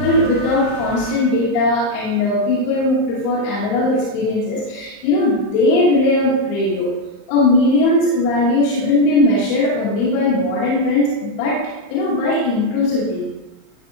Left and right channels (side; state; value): right; late; 34 ms